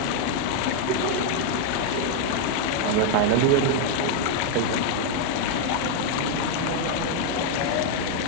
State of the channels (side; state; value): both; different; correlation 0.00